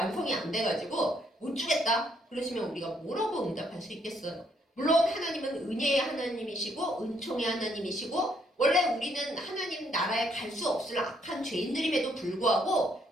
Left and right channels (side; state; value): both; normal; correlation 0.70